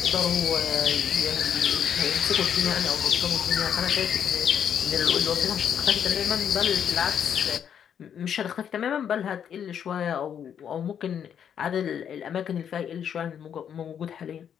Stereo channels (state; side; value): quieter; right; 8.5 dB